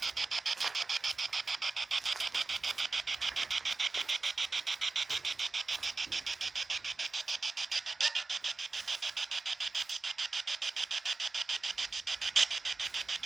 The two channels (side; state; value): left; quieter; 3.8 dB